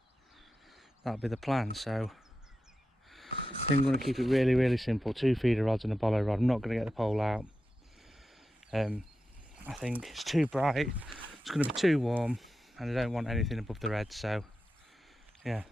that'll be the plan. So I think I'm going to keep it really simple. 2 feeder rods and a Bolo rod. I'm not going to get the pole out. I think it's too bright, it's going to be too warm, and I don't want anything above the red. So yeah,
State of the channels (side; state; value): both; normal; correlation 0.91